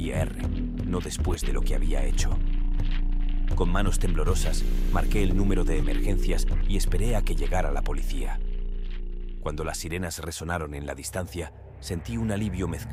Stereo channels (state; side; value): identical; both; correlation 1.00